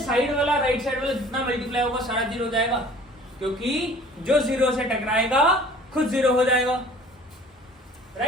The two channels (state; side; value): normal; both; correlation 0.49